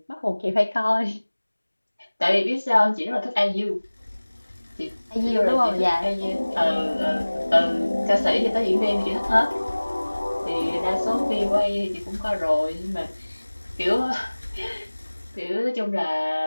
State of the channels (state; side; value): inverted; both; correlation -1.00